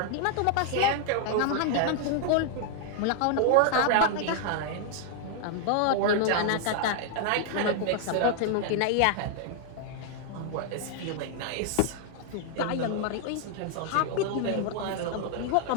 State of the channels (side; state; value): both; different; correlation 0.00